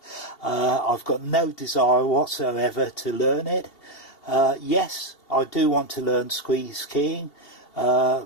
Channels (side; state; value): right; late; 2.8 ms